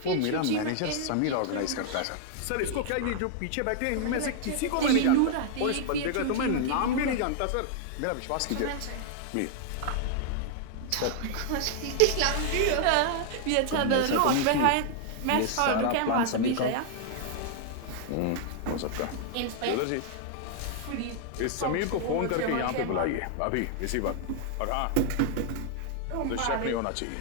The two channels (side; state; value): both; different; correlation 0.00